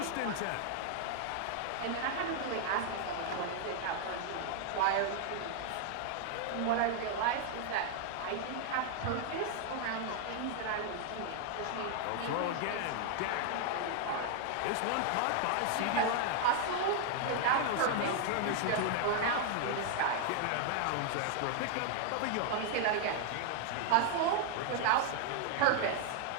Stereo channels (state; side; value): different; both; correlation 0.00